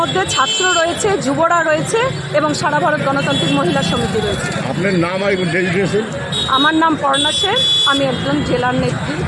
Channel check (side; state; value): both; identical; correlation 1.00